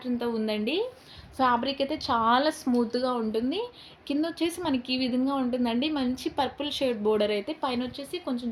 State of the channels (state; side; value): identical; both; correlation 1.00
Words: ఉందండి. ఫ్యాబ్రిక్ అయితే చాలా స్మూత్గా ఉంటుంది. కింద వచ్చేసి మనకి ఈ విధంగా ఉంటుందండి, మంచి పర్పుల్ షేడ్ బోర్డర్ అయితే, పైన వచ్చేసి కొంచెం